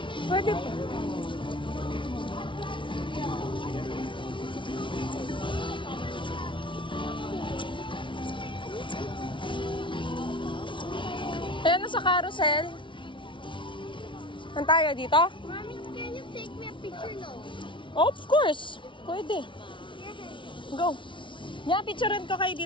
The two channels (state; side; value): late; right; 0.24 ms